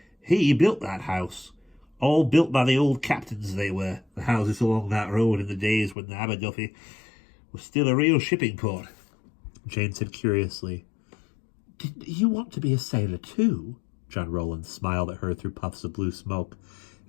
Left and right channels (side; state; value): right; drops out; at 6.0 s